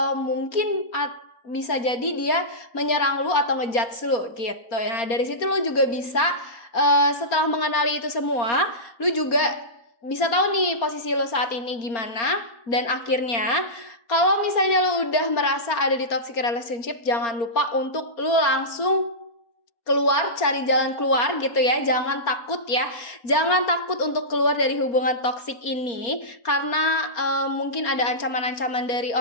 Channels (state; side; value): late; right; 4.3 ms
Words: mungkin bisa jadi dia menyerang lu atau ngejudge lu gitu. Nah, dari situ lu juga bisa setelah mengenali itu semua, lu juga bisa tahu nih posisi lu saat ini gimana. Dan akhirnya kalau misalnya lu udah merasa ada di toxic relationship, jangan lupa untuk lu langsung keluar, cari jalan keluar gitu ya. Jangan takut ya. Jangan takut untuk keluar dari hubungan toksik ini karena mungkin ada ancaman-ancaman dari